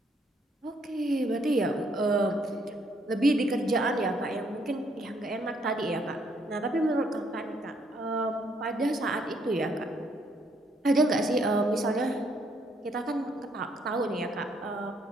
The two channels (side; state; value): both; normal; correlation 0.70